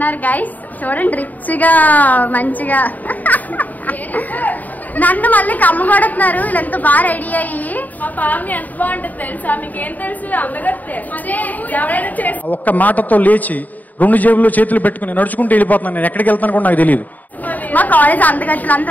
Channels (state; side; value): late; right; 0.081 ms